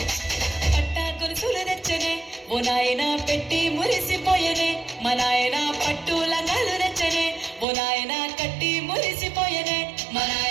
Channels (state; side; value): drops out; left; at 7.7 s